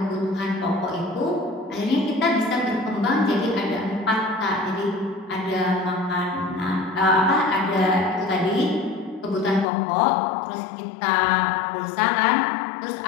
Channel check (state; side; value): drops out; right; at 9.7 s